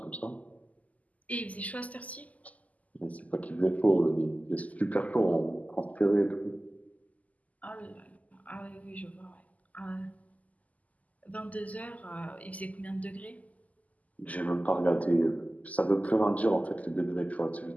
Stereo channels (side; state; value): right; late; 0.075 ms